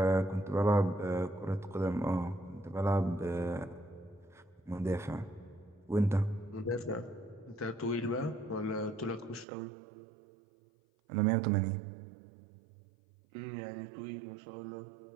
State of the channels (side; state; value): left; drops out; at 9.5 s